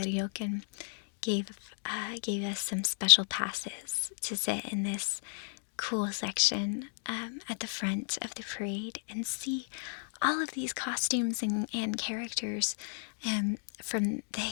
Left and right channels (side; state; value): right; silent; digital silence